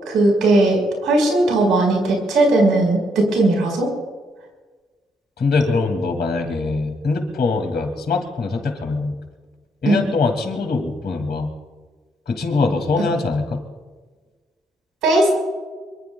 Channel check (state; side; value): normal; both; correlation 0.74